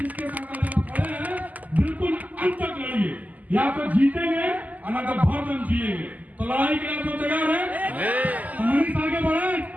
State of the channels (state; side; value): late; left; 0.079 ms